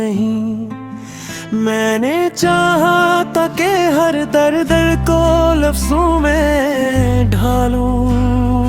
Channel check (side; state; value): both; identical; correlation 1.00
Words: मैंने चाहा था कि हर दर्द को लफ्जों में ढालूं,